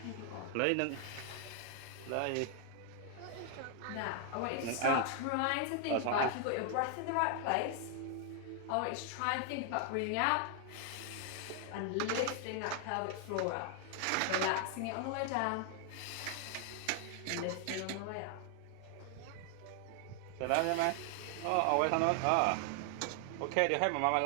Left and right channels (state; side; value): different; both; correlation 0.00